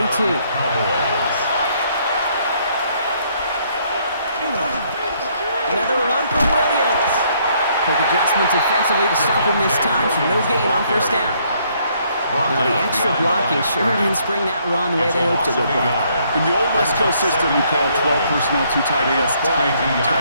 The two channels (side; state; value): both; inverted; correlation -0.68